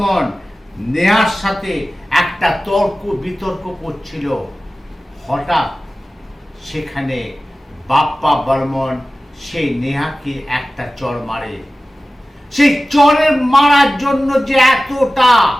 নেহার সাথে একটা তর্ক বিতর্ক করছিল। হঠাৎ সেখানে বাপ্পা বর্মন সেই নেহাকে একটা চড় মারে। সেই চড়ের মারার জন্য যে এতটা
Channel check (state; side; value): normal; both; correlation 0.96